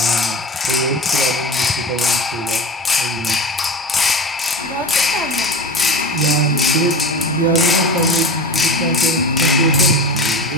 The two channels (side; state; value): both; normal; correlation 0.30